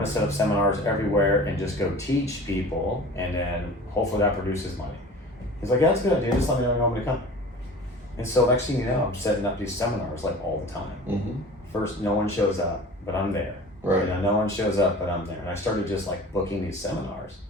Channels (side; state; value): both; normal; correlation 0.40